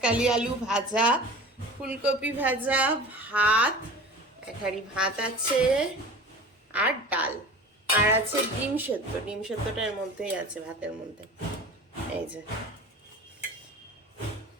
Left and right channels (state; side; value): normal; both; correlation 0.37